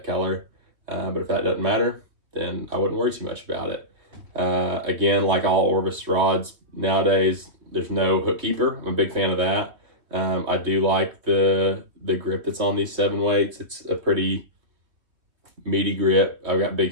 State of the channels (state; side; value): late; left; 3.0 ms